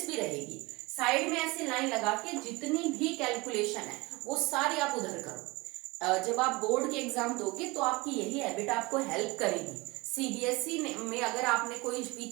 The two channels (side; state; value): left; quieter; 23.5 dB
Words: भी रहेगी। साइड में ऐसे लाइन लगा के जितनी भी कैलकुलेशन है वो सारी आप उधर करो। जब आप बोर्ड के एग्जाम दोगे तो आपकी यही हैबिट आपको हेल्प करेगी। सीबीएसई में अगर आपने कोई